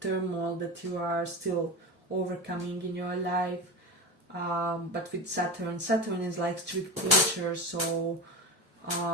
turmoil that you are still overcoming in your life. But with Saturn is like strict teacher, so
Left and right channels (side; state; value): both; normal; correlation 0.22